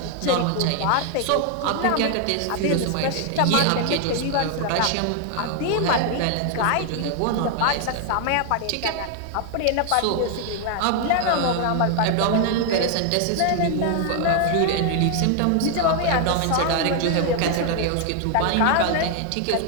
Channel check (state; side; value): different; both; correlation 0.00